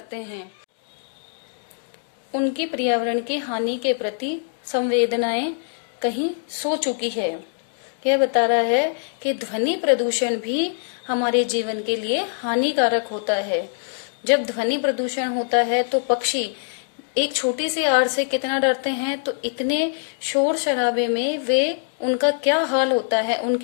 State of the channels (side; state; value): right; silent; digital silence